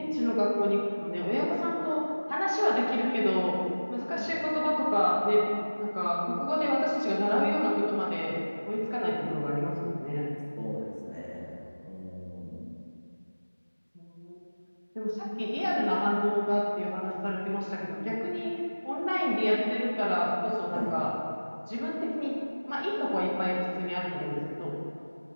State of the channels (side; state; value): both; inverted; correlation -1.00